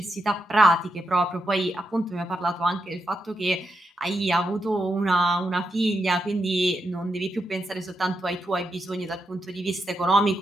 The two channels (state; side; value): normal; both; correlation 0.84